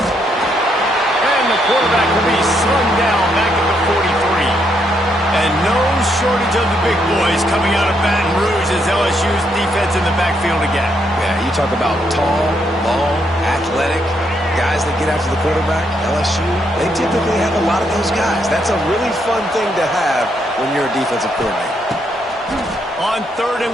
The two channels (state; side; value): normal; both; correlation 0.76